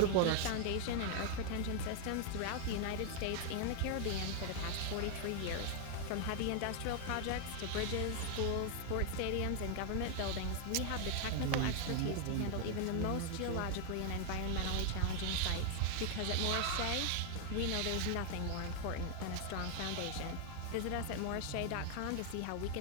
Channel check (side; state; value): both; different; correlation 0.00